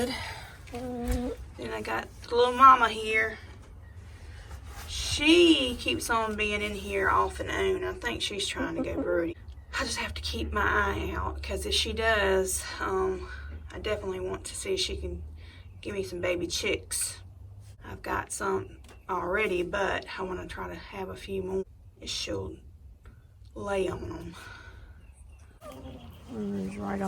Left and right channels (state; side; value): identical; both; correlation 1.00